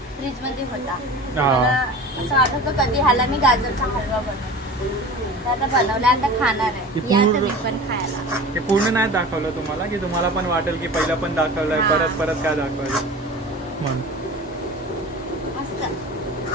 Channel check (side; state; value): both; normal; correlation 0.36